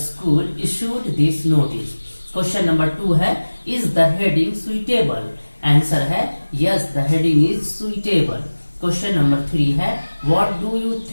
issued this notice. Question number 2 है is the heading suitable. Answer है yes the heading is suitable. Question number 3 है what do you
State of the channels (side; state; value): both; inverted; correlation -1.00